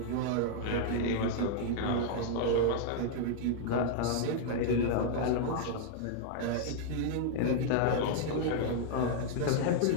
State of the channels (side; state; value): both; different; correlation -0.01